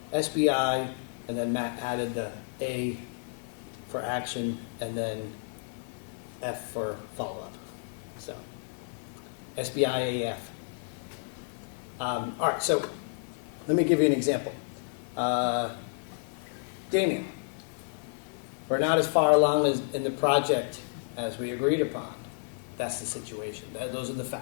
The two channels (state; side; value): silent; right; digital silence